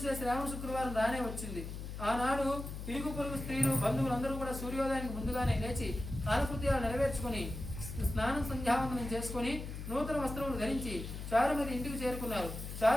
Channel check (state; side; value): noise; left; hum, 8 dB below the sound